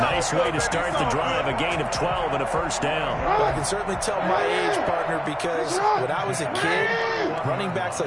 Nice way to start the drive, a gain of 12 and a first down. Well, I can certainly tell my age, partner, because when I was a kid, running backs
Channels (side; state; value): both; identical; correlation 1.00